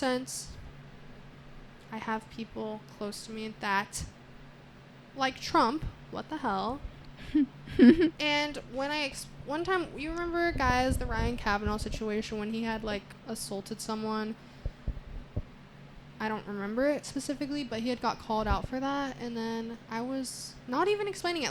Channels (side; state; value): both; identical; correlation 1.00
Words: I have people close to me that, like Trump, what the hell? And when one time, you remember, guys, the Ryan Kavanaugh situation when he had, like, assaulted someone? I don't remember it specifically, but he had got called out for that. And then I was not even explaining